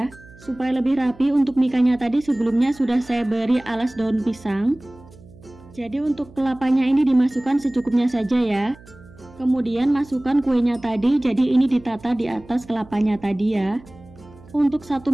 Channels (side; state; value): right; noise; hum, 23 dB below the sound